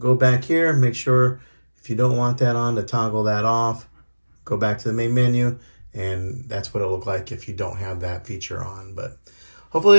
back here and make sure if you don't want that on to toggle that off. Go back to the main menu, and that's what it'll look like if you don't have that feature on. But hopefully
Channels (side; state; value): both; inverted; correlation -1.00